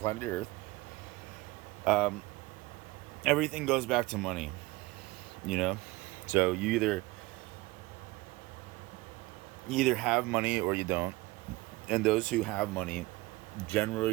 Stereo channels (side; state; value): left; quieter; 20.8 dB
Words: Earth, everything goes back to money, so you either have money or you don't, and those who have money